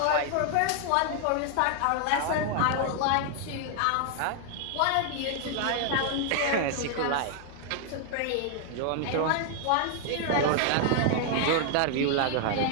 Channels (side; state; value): both; different; correlation 0.00